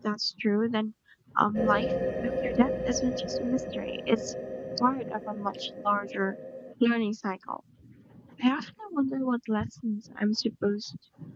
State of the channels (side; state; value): both; identical; correlation 1.00